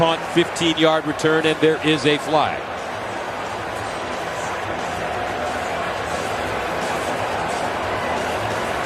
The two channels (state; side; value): identical; both; correlation 1.00